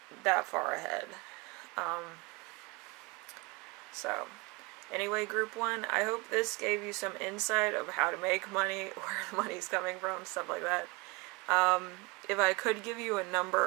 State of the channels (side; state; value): left; quieter; 25.8 dB